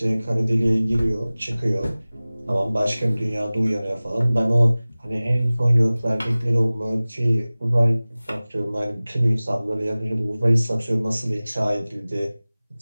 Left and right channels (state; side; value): inverted; both; correlation -0.99